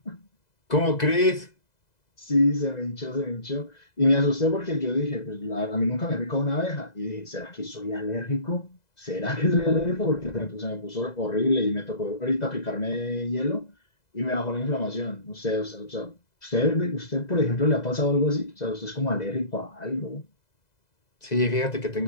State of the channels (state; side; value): late; right; 2.0 ms